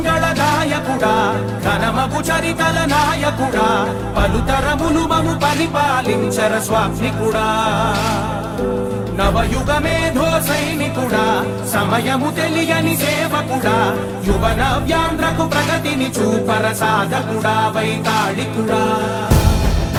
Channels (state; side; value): identical; both; correlation 1.00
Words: నాయకుడా ఘనమగు చరితల నాయకుడా పలుతరములు మము పరిపాలించర స్వామికుడా నవయుగ మేధో సైనికుడా సమయము తెలియని సేవకుడా యువన వ్యాంధ్రకు ప్రగతిని చూపర సాధకుడా వైతాళికుడా